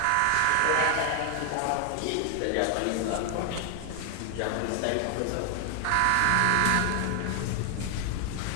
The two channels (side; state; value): both; different; correlation 0.00